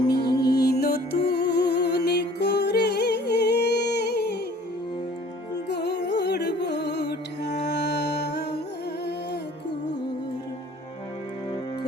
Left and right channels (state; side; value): normal; both; correlation 0.52